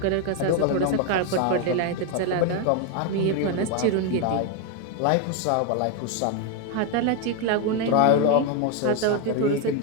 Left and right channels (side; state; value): both; different; correlation 0.01